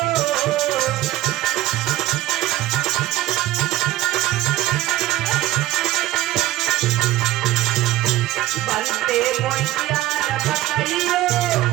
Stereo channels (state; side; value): quieter; left; 16.1 dB